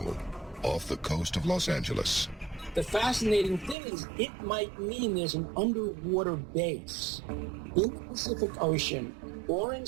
off the coast of Los Angeles. The fascinating thing is it might mean there's an underwater base in the Pacific Ocean or in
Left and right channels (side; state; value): left; drops out; at 3.8 s